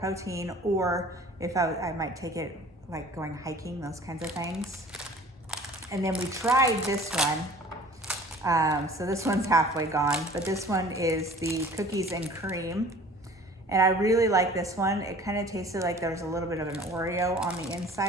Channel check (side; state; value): both; normal; correlation 0.48